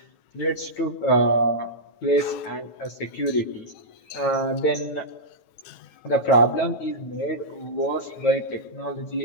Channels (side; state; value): right; late; 9.4 ms